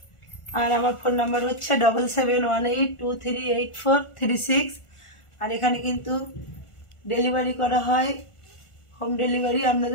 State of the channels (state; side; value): late; right; 1.4 ms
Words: আর আমার ফোন নাম্বার হচ্ছে 7718238436। আর এখানে কিন্তু ডেলিভারি করা হয়, হোম ডেলিভারি।